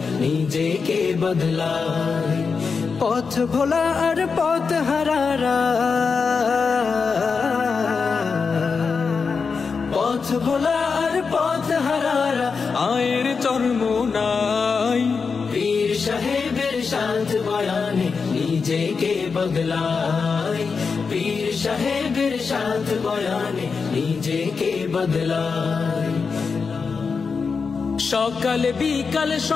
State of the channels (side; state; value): right; quieter; 5.2 dB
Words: নিজেকে বদলায়। পথ ভোলা আর পথ হারারা, পথ ভোলা আর পথ হারারা আয়ের চরমোনাই পীর সাহেবের সাথ বয়ানে নিজেকে বদলায়। পীর সাহেবের সাথ বয়ানে নিজেকে বদলায়। সকাল বিকাল